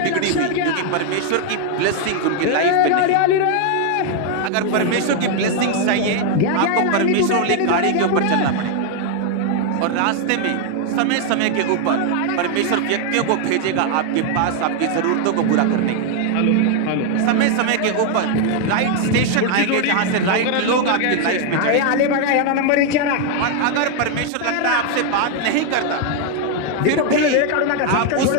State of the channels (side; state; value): both; different; correlation 0.01